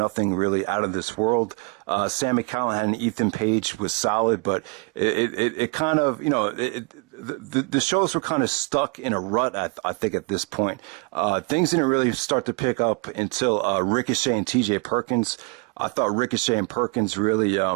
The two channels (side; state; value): left; quieter; 29.4 dB